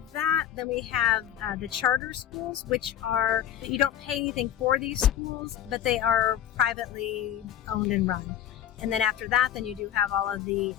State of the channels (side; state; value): right; quieter; 10.8 dB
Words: that, then we have the charter schools, which are, you don't pay anything for these schools, but they are privately owned and run. And then after that, then you do have all of the